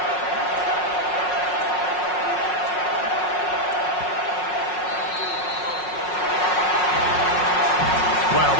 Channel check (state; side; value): late; right; 5.5 ms